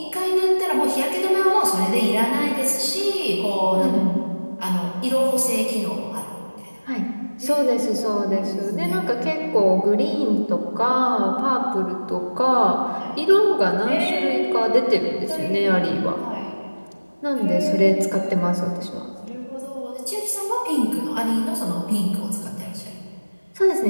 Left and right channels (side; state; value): both; inverted; correlation -1.00